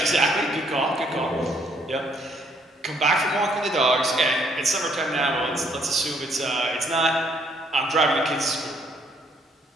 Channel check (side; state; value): both; normal; correlation 0.67